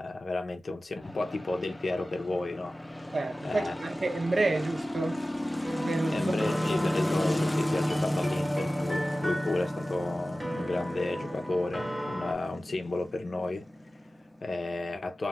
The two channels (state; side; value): normal; both; correlation 0.96